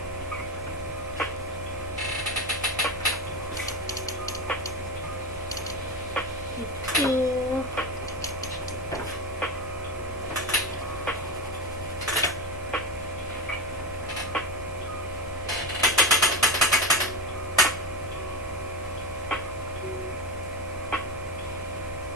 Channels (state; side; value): normal; both; correlation 0.20